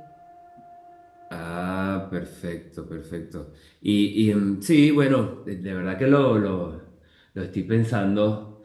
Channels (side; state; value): both; identical; correlation 1.00